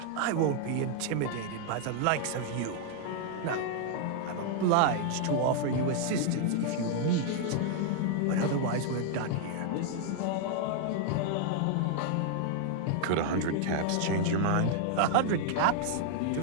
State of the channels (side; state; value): both; different; correlation 0.00